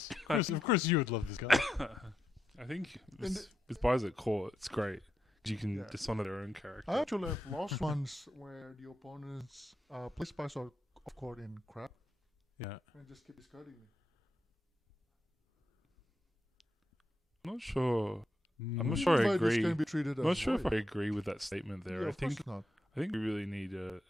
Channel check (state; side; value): normal; both; correlation 0.84